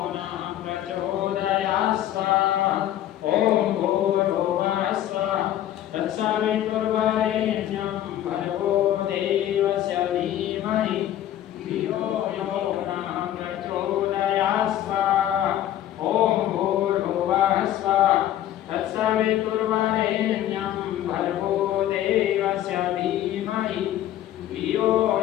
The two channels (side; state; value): right; quieter; 12.2 dB